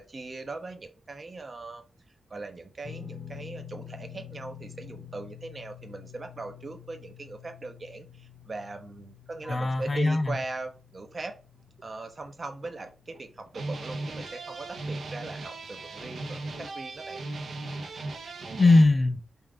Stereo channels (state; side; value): normal; both; correlation 0.94